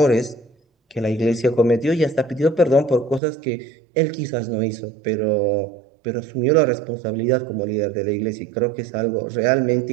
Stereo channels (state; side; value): drops out; left; at 3.2 s